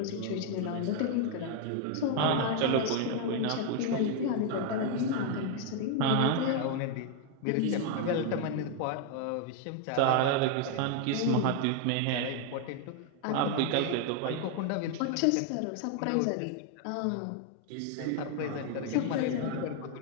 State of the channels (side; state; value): both; different; correlation 0.00